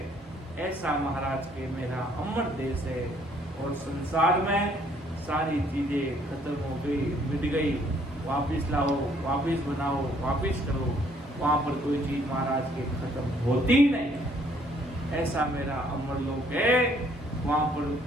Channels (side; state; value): both; normal; correlation 0.64